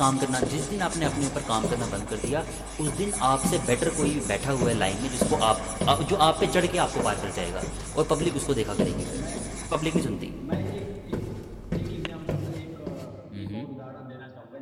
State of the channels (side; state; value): both; identical; correlation 1.00